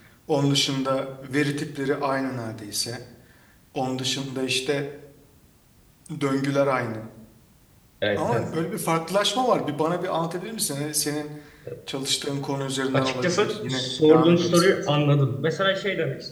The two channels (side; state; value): both; identical; correlation 1.00